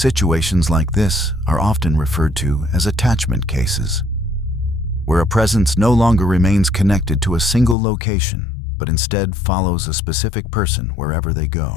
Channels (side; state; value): right; drops out; at 7.8 s